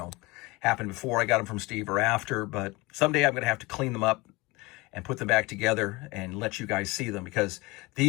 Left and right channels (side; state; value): right; quieter; 23.4 dB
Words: happened before I got them from Steve or after, but someday I'm going to have to clean them up and put them back together and let you guys see them, because